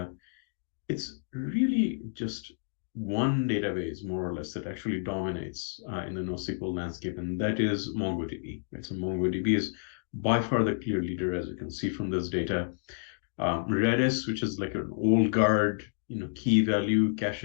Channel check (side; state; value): right; silent; digital silence